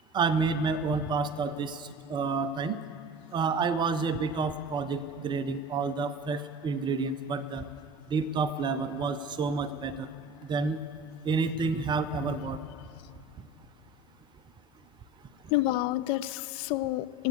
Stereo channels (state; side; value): normal; both; correlation 0.36